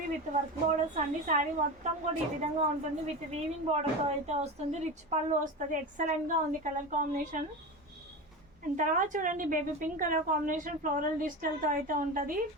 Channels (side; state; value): both; normal; correlation 0.25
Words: విత్ వర్క్ బోర్డర్స్ అండి. శారీ మొత్తం కూడా ఈ విధంగా ఉంటుంది, విత్ వీవింగ్ బోర్డర్తో అయితే వస్తుంది. రిచ్ పళ్ళు వస్తుంది, ఎక్సలెంట్గా ఉంది కలర్ కాంబినేషన్. అండ్ తర్వాత చూడండి baby pink colour combination floral డిజిటల్తో అయితే ఉంటుంది.